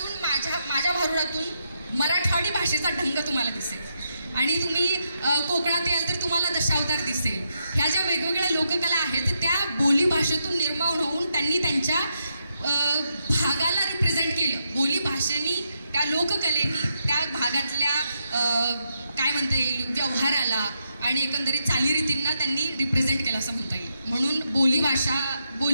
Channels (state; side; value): inverted; both; correlation -0.82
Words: माझ्या भारुडातून मराठवाडी भाषेचा ढंग तुम्हाला दिसेल. आणि तुम्ही कोकणात याल तर तुम्हाला दशावतार दिसेल. ह्या ज्या वेगवेगळ्या लोककला आहेत त्या बोली भाषेतून निर्माण होऊन त्यांनी त्यांच्या भागाला रिप्रेझेंट केलं. बोली भाषेनी, त्या लोककलेनी त्या भागातल्या काय म्हणता येईल व्यवहाराला आणि एकंदरीत चालीरीतींना त्यांनी रिप्रेझेंट केलं असं म्हणता येईल. म्हणून